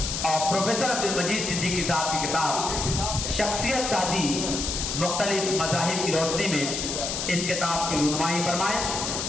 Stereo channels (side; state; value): left; noise; hiss, 3 dB below the sound